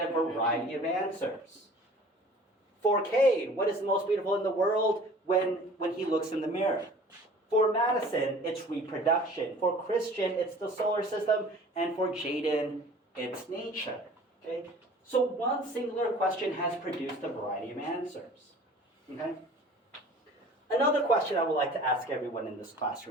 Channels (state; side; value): normal; both; correlation 0.47